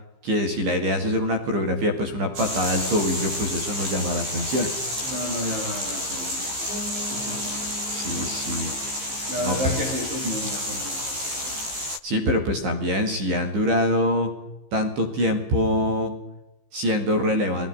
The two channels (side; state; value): left; late; 15 ms